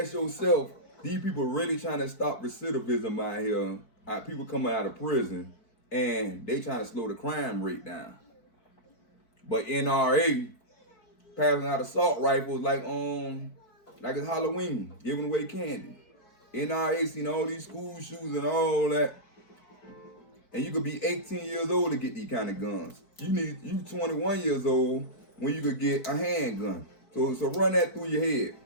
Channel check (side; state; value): right; late; 4.6 ms